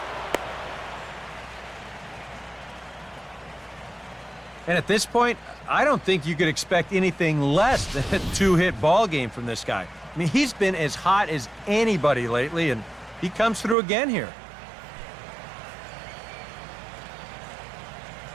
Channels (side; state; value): left; drops out; at 13.8 s